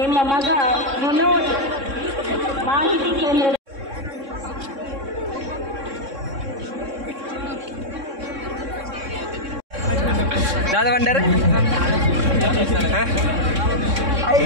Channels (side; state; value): left; late; 3.6 ms